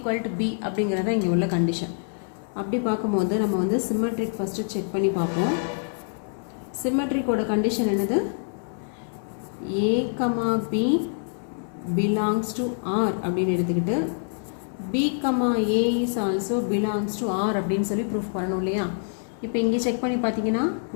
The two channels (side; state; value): right; silent; digital silence